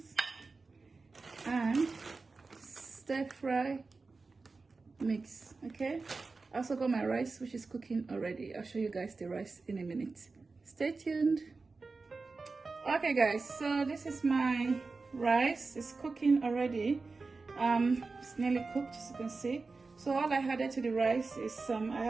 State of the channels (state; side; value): quieter; left; 4.0 dB